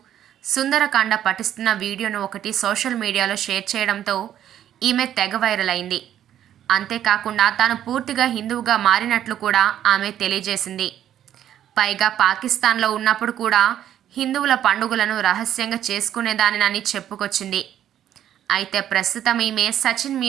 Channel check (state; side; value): quieter; left; 10.9 dB